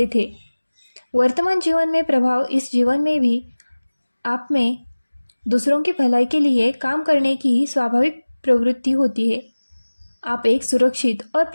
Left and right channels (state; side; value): inverted; both; correlation -1.00